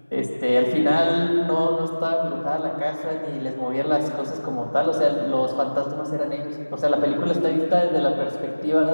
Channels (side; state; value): both; inverted; correlation -1.00